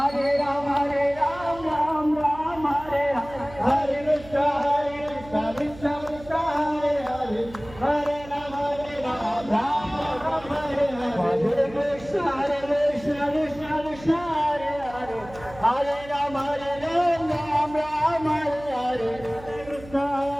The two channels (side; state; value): right; noise; hum, 18 dB below the sound